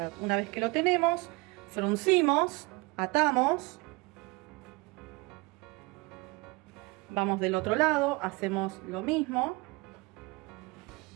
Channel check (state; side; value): quieter; left; 25.9 dB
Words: Una vez que lo tenemos, fruncimos, atamos. Vamos del otro lado, hacemos lo mismo.